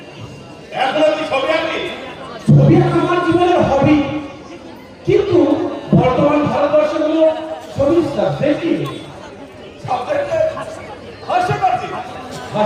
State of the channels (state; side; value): identical; both; correlation 1.00